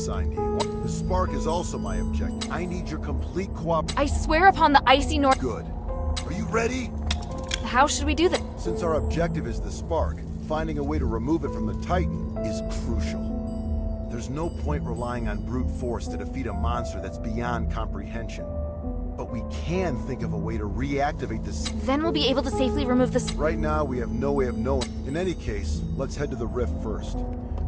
to you. The spark is also my objective. I need your complete cooperation. I swear upon the icy north... Good. Are you ready? How should we do that? Since our objective is the spark, finding a way to remove it from the Titan is crucial. There's no point relying on brute force to defeat a monster that's beyond comprehension. But we can think of a way to reactivate this. Then we'll be able to safely remove this. Right now, we have no way of knowing. In any case, let's head to the rift first.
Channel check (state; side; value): identical; both; correlation 1.00